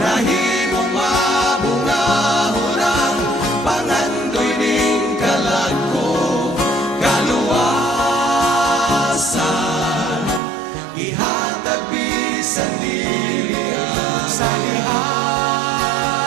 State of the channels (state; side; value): drops out; left; at 10.4 s